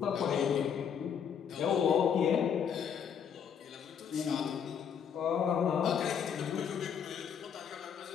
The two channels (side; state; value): right; quieter; 7.6 dB